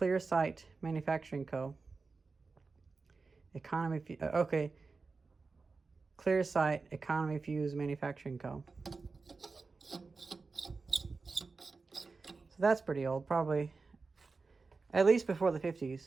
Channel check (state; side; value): quieter; left; 4.2 dB